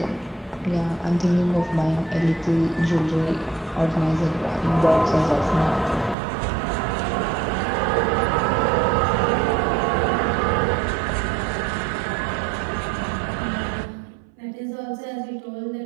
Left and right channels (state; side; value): drops out; left; at 6.2 s